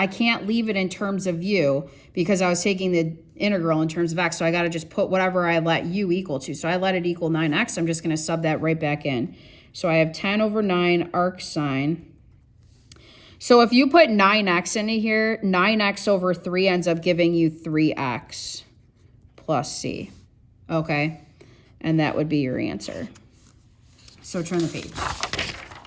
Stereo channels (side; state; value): both; identical; correlation 1.00